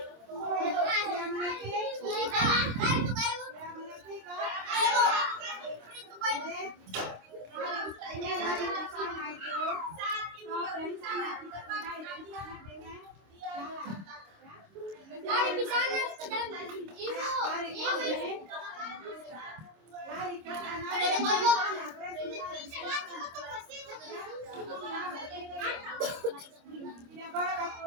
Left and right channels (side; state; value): left; late; 26 ms